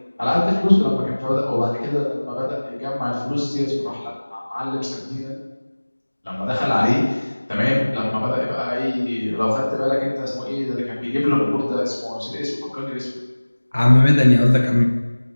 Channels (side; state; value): both; inverted; correlation -1.00